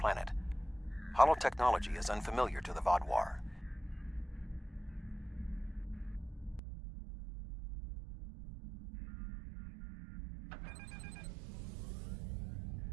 Holotechnology is unfamiliar to the Vaadwaur.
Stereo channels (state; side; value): drops out; left; at 6.6 s